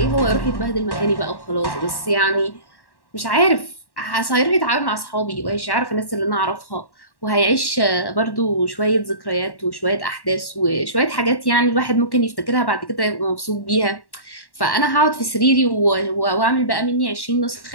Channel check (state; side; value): late; right; 1.1 ms